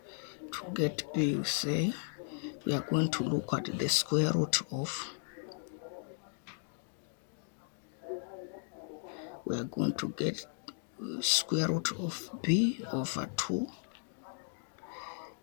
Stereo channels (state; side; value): silent; right; digital silence